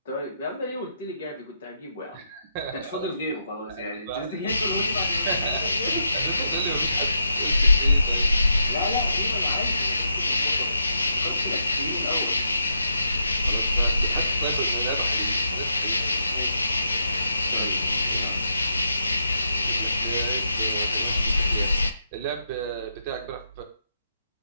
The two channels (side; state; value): both; inverted; correlation -0.80